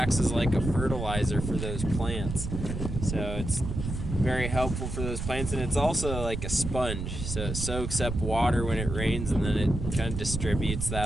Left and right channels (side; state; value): right; noise; rumble, 5 dB below the sound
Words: as like a fertilizer for those plants. So it's very helpful for those plants, and it's also like a sponge. So it soaks up water when it rains, and then it kind of distributes